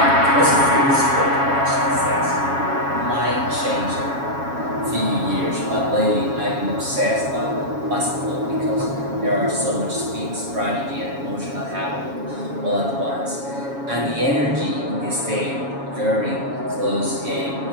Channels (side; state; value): left; late; 7.2 ms